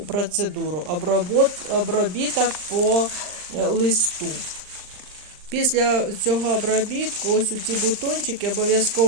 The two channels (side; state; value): left; late; 39 ms